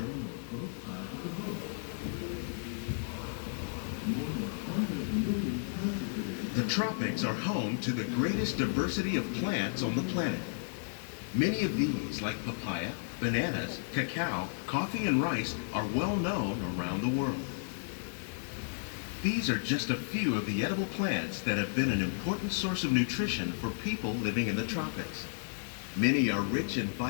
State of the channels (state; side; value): silent; right; digital silence